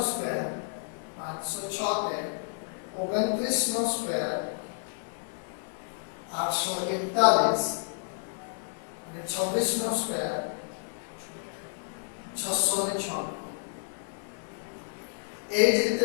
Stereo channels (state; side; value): silent; right; 57 dB below the other